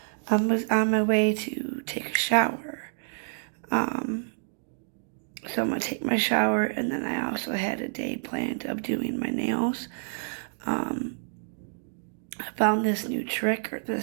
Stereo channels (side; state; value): left; silent; 59 dB below the other